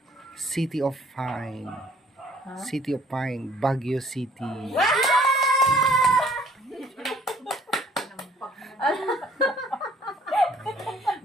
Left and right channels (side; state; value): both; normal; correlation 0.58